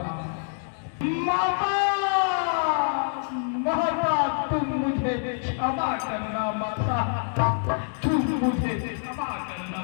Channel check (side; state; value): right; silent; digital silence